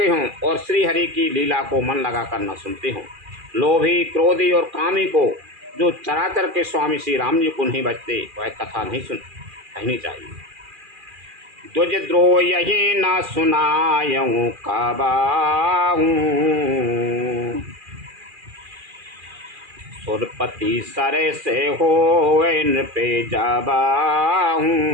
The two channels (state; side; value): late; left; 2.4 ms